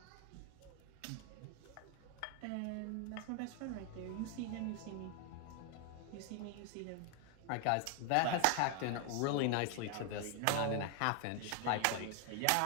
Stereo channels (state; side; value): different; both; correlation 0.00